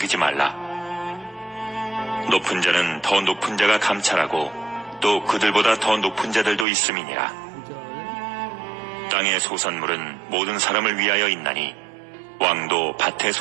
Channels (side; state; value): left; drops out; at 6.7 s